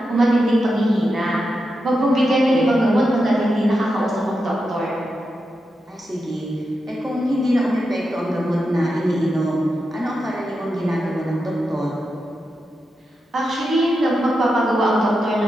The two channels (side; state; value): both; normal; correlation 0.88